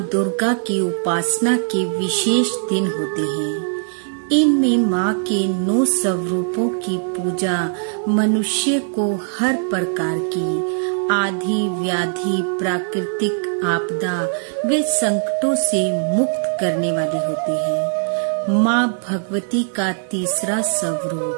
दुर्गा की उपासना के विशेष दिन होते हैं। इनमें माँ के 9 स्वरूपों की पूजा मनुष्य को हर प्रकार की आधि व्याधि, प्राकृतिक आपदा व संकटों से मुक्त करने वाली होती है। माँ भगवती का तीसरा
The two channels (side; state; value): left; silent; digital silence